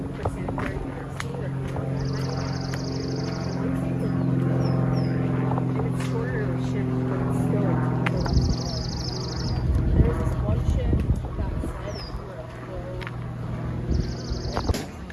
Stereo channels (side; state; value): both; identical; correlation 1.00